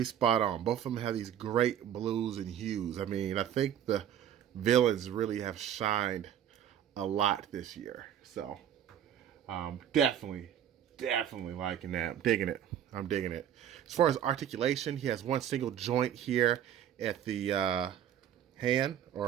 spot on. Both of them have these great blues and hues. I mean, I think the villains really have shined a lot this year. So definitely liking that. I'm digging it. As far as articulation, he has one single joint here at the hand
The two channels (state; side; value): quieter; left; 10.1 dB